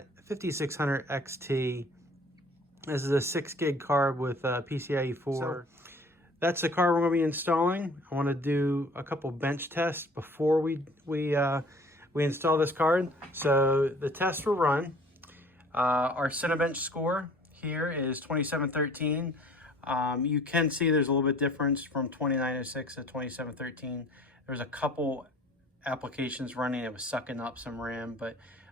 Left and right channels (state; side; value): normal; both; correlation 0.51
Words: 5600 XT. This is a 6 gig card with PCIe 4. So that's the card we're going to be installing. I want to do a couple bench tests before we install this card. So the tests were run. Our Cinebench score here is 2713. You can see there's a little bit difference from 2906 to 2713. There's a couple applications running. It was sucking up some RAM, but